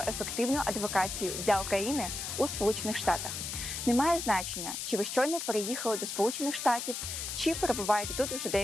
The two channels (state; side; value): noise; left; hiss, 5 dB below the sound